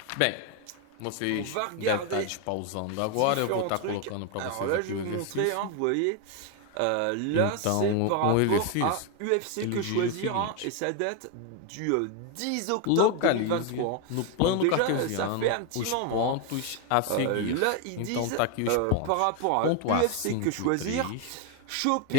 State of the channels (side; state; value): both; different; correlation 0.01